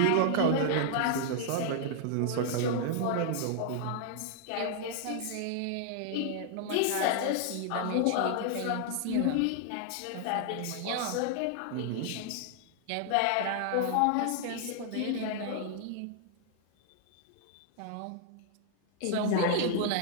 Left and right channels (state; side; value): different; both; correlation 0.00